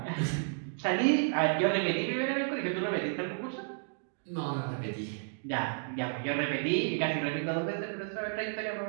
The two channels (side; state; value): left; silent; digital silence